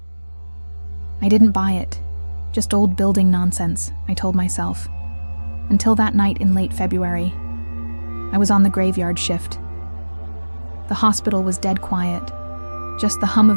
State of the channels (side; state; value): both; inverted; correlation -1.00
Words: I didn't buy it. Just old building nonsense, I told myself. Until that night in late February. I was on the graveyard shift. The hospital was dead quiet. Just the hum